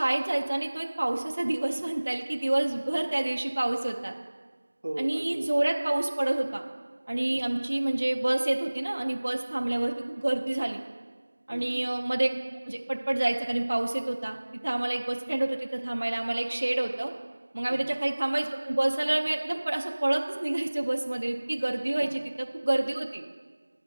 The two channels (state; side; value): inverted; both; correlation -1.00